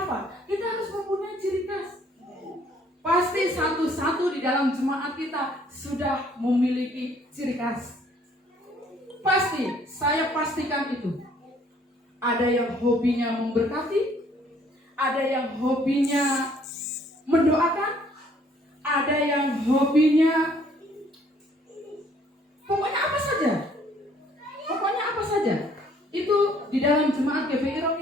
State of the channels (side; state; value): both; normal; correlation 0.62